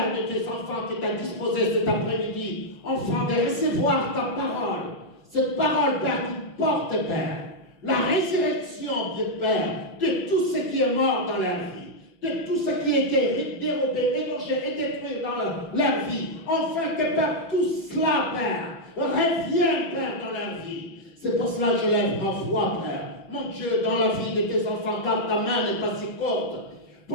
de tes enfants qui t'as disposé cet après-midi, enfant, de recevoir ta parole. Cette parole, Père, qui porte, Père, la résurrection, Dieu Père, de tout ce qui est mort dans leur vie, de tout ce qui a été dérobé, égorgé et détruit dans leur vie. Enfin que, Père, tout cela, Père, revienne, Père, dans leur vie. C'est pour cela que je lève ma foi, Père. Mon Dieu, dans la vie de tes enfants, car ta main n'est pas si courte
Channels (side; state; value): right; late; 6.0 ms